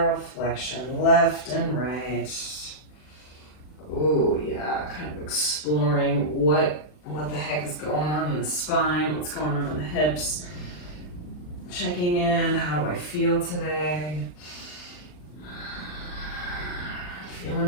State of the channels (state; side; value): late; right; 39 ms